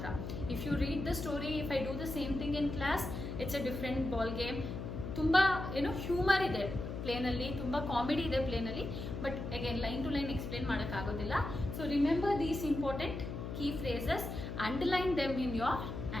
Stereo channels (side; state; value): left; noise; hum, 6 dB below the sound